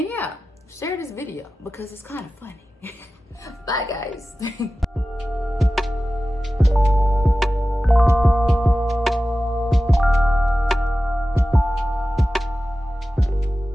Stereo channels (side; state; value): both; normal; correlation 0.95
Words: yeah, share this video because it's kind of funny. Bye, guys.